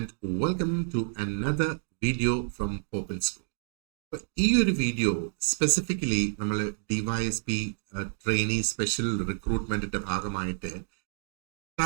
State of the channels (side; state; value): left; silent; digital silence